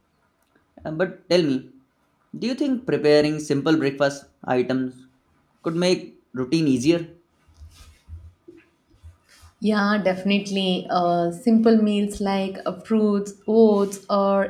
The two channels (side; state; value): both; identical; correlation 1.00